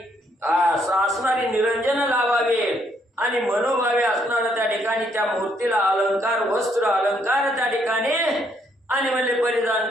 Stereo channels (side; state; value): both; normal; correlation 0.71